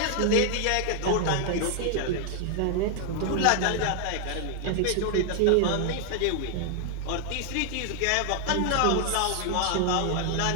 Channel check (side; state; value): both; different; correlation 0.00